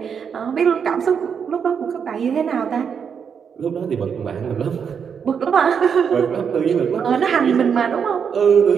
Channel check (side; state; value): left; quieter; 6.9 dB